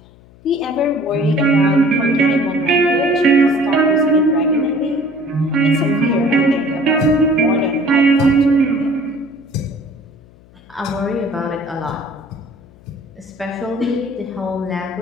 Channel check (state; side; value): noise; left; hum, 26 dB below the sound